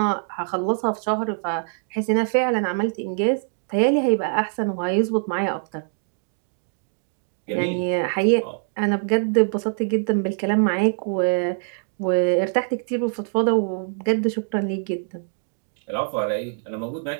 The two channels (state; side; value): silent; left; 63 dB below the other